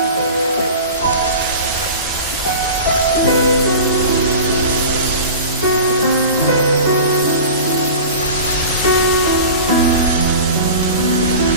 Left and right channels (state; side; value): inverted; both; correlation -0.35